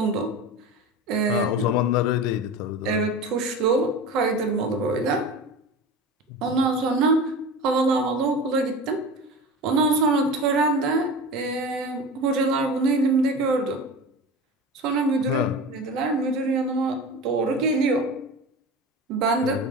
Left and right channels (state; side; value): normal; both; correlation 0.31